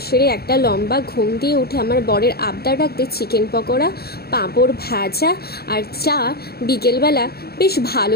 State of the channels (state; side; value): late; right; 0.46 ms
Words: সেরে একটা লম্বা ঘুম দিয়ে উঠে আমার বরের আবদার রাখতে চিকেন পকোড়া, পাঁপড় ভাজা আর চা বিকেলবেলা বেশ